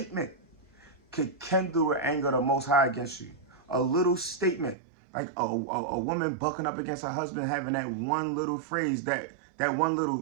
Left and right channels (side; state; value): left; drops out; at 4.8 s